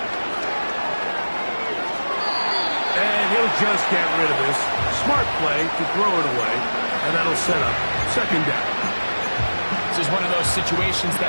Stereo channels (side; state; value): both; inverted; correlation -1.00